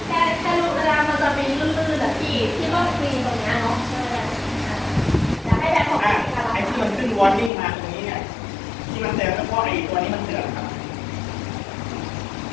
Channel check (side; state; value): right; drops out; at 7.5 s